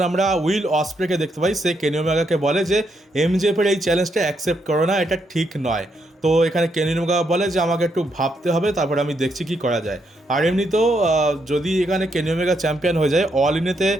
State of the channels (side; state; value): both; normal; correlation 0.78